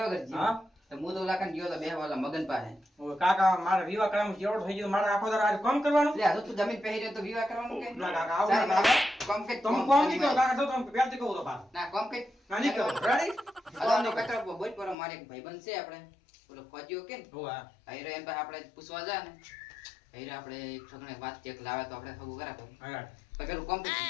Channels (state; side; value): drops out; right; at 15.0 s